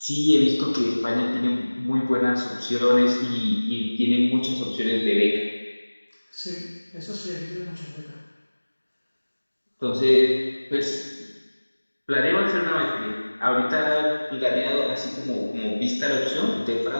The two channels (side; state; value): both; inverted; correlation -1.00